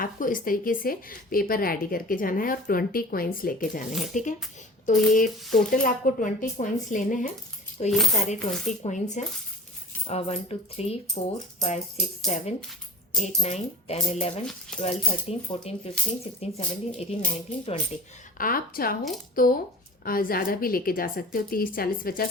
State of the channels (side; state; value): both; normal; correlation 0.41